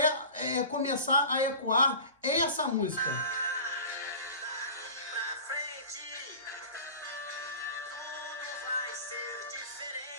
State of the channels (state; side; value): inverted; both; correlation -0.37